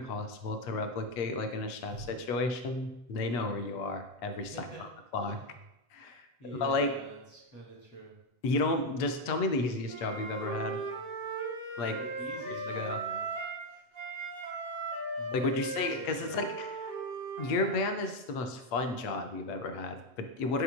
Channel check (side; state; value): right; late; 8.5 ms